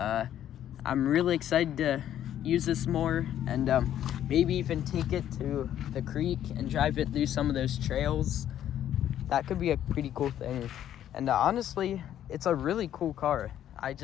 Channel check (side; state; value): right; quieter; 11.0 dB